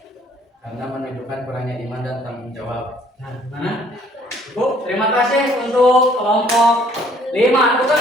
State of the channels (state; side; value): normal; both; correlation 0.60